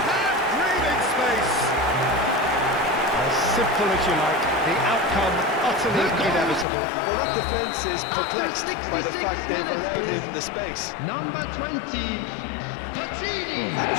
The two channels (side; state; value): right; drops out; at 6.7 s